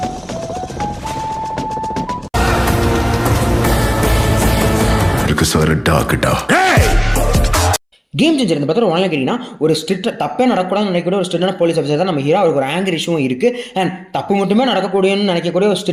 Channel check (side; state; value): both; identical; correlation 1.00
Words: Game changer இந்த படத்தில் ஒன்றில் கேட்டிங்கன்னா ஒரு ஸ்ட்ரிக்ட் தப்பே நடக்கூடாதுன்னு நினைக்கக்கூடிய ஒரு ஸ்ட்ரிக்டான போலீஸ் ஆஃபீஸர் தான் நம்ம ஹீரோ. அவருக்கு ஒரு ஆங்கர் இஷ்யூவும் இருக்குது அண்ட் தப்பு மட்டுமே நடக்கக்கூடியன்னு நினைக்கக்கூடிய ஒரு